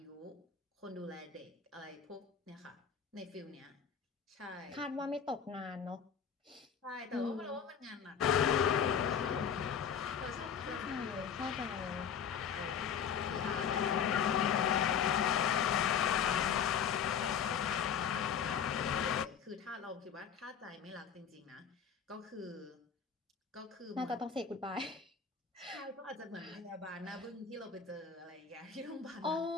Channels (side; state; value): right; quieter; 7.4 dB